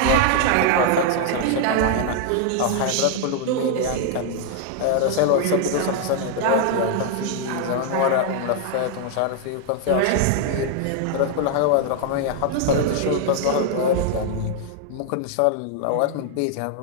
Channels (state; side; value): different; both; correlation 0.00